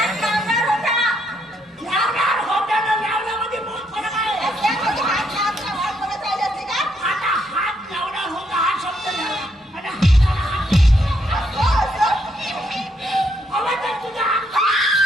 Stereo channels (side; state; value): both; normal; correlation 0.74